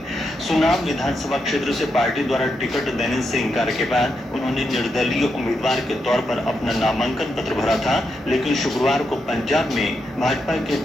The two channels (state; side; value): normal; both; correlation 0.83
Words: सुनाम विधानसभा क्षेत्र से पार्टी द्वारा टिकट देने से इंकार के बाद उन्होंने निर्दलीय उम्मीदवार के तौर पर अपना नामांकन पत्र भरा था, लेकिन शुक्रवार को पंजाब में भाजपा के